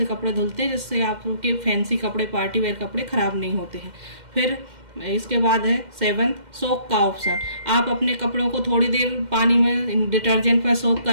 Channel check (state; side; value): late; left; 2.1 ms